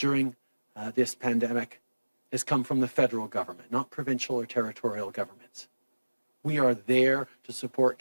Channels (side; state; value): both; inverted; correlation -1.00